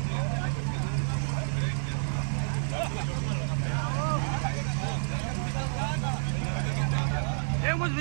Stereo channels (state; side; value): silent; left; digital silence